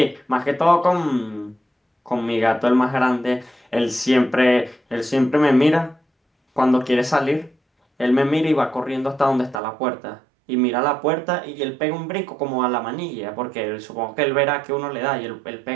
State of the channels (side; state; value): left; drops out; at 9.6 s